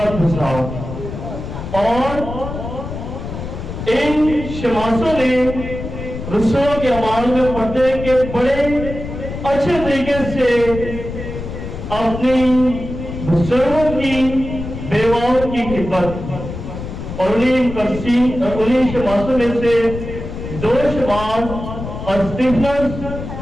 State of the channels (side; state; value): left; noise; rumble, 8 dB below the sound